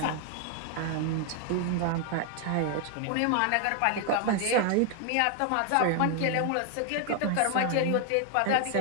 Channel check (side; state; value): both; different; correlation 0.00